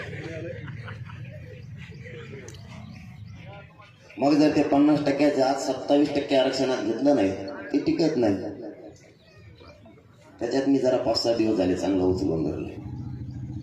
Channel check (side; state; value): both; identical; correlation 1.00